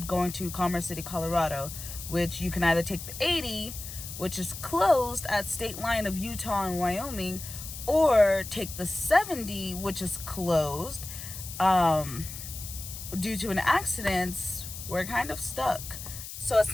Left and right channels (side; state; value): left; noise; hiss, 10 dB below the sound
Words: going to Commerce City, Colorado, which you can either take the 80, which is closed at state line of Utah and Wyoming, or take the 70, which is closed. Due to an accident, we're kind of stuck. So